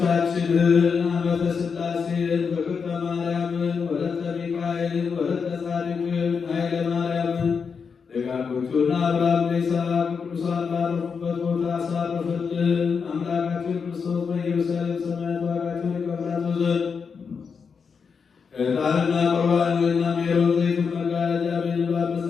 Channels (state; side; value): quieter; right; 5.8 dB